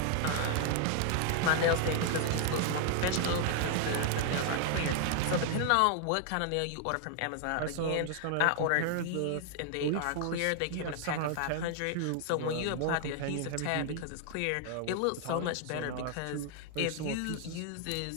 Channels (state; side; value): different; both; correlation 0.00